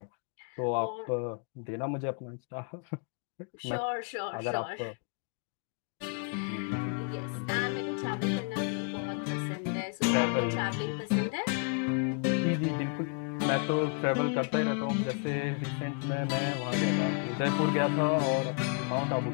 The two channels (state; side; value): quieter; right; 37.3 dB